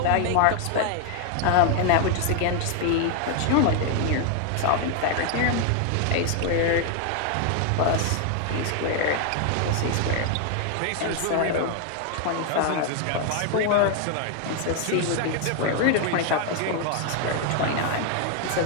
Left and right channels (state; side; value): different; both; correlation 0.00